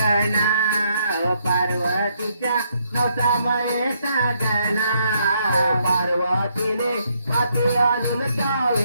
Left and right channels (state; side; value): inverted; both; correlation -0.74